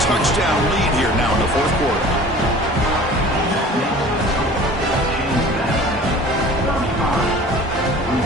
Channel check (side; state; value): both; normal; correlation 0.44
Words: lead here now in the fourth quarter.